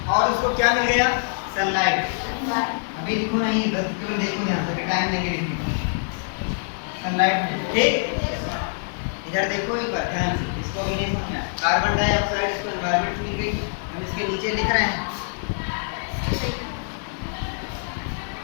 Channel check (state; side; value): silent; right; 60 dB below the other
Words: और उसको क्या मिल गया, सनलाइट। अभी लिखो नहीं, बस केवल देखो ध्यान से, टाइम देंगे लिखने का। सनलाइट में, ठीक, इधर देखो एक बार ध्यान से, इसको भी नहीं समझना। कार्बन डाइऑक्साइड इसको एनवायरनमेंट से मिल गई, हम इसके नीचे लिख रहे हैं।